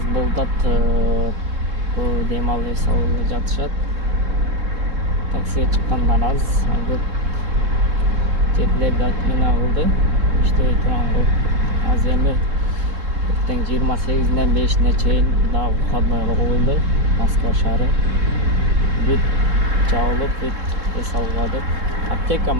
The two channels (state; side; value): late; left; 3.6 ms